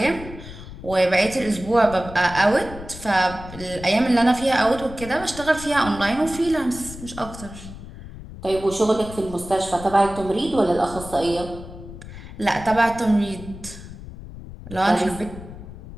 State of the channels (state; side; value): noise; left; rumble, 14 dB below the sound